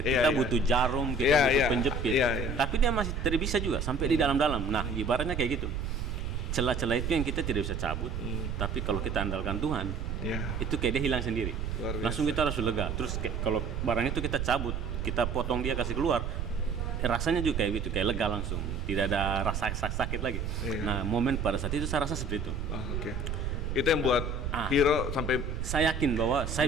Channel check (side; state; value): right; noise; rumble, 3 dB below the sound